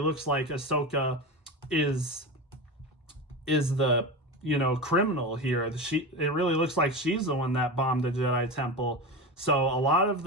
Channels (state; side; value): normal; both; correlation 0.24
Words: like Ahsoka is the criminal here. It really looks like she's the one that bombed the Jedi Temple. So a lot of